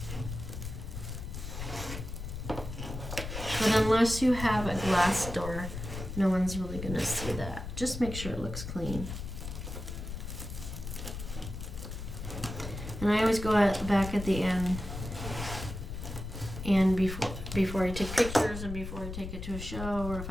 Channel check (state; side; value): noise; left; rumble, 8 dB below the sound